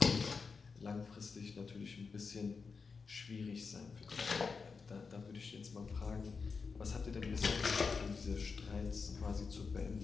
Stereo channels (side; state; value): right; quieter; 5.0 dB